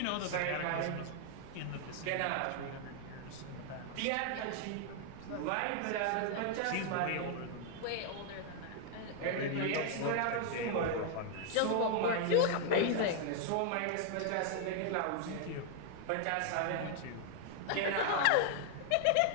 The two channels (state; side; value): different; both; correlation 0.00